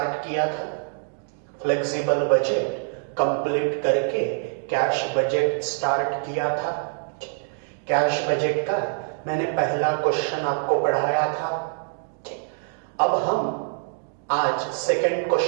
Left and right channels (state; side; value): silent; left; 62 dB below the other